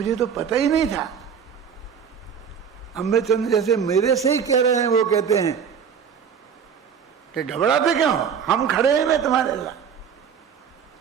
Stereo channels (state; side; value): quieter; left; 7.2 dB